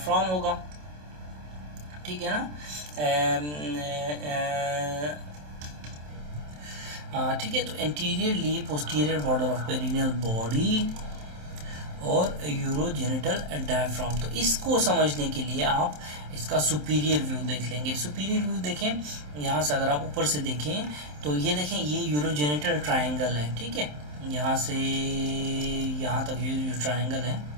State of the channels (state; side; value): late; left; 27 ms